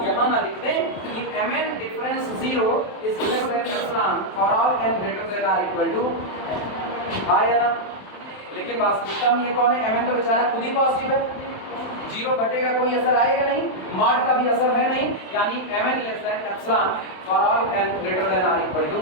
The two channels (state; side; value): late; right; 27 ms